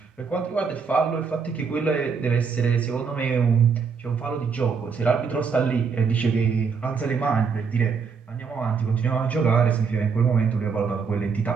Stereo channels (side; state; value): left; quieter; 5.7 dB